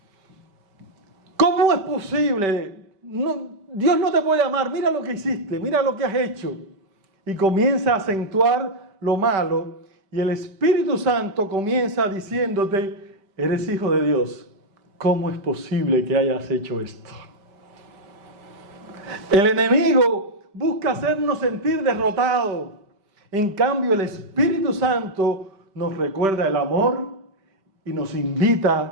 ¿Cómo es posible? Dios no te puede amar, mira lo que hiciste, mira lo que has hecho. Y comienza a acentuar lo malo. Y el Espíritu Santo comienza diciéndote, eres hijo de Dios. ¿Cómo es posible que hayas hecho esto? El enemigo busca hacernos sentir derrotados. En cambio, el Espíritu Santo nos recuerda el amor y nos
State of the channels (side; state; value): left; late; 5.1 ms